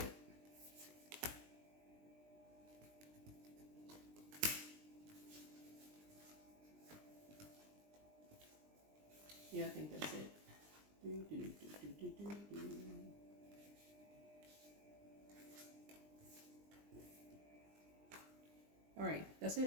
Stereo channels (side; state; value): left; late; 20 ms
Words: Yeah, I think that's it. All right, that's